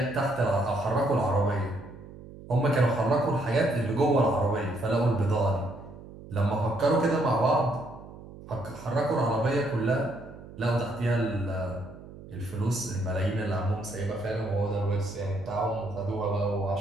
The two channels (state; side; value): noise; right; hum, 16 dB below the sound